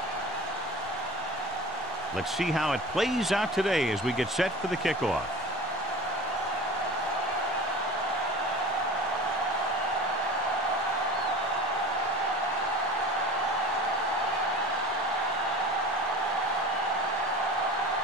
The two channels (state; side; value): normal; both; correlation 0.37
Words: Let's see how it plays out today as we get set for the kickoff.